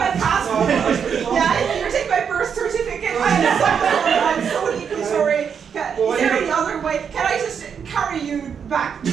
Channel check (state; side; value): quieter; left; 7.1 dB